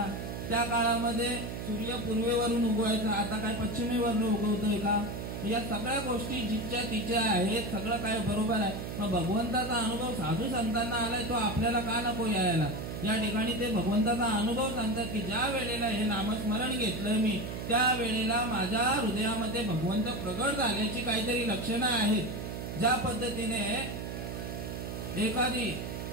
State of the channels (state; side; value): noise; right; hum, 6 dB below the sound